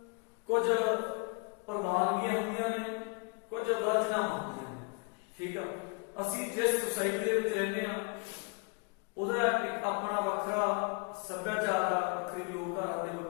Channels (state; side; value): quieter; right; 33.5 dB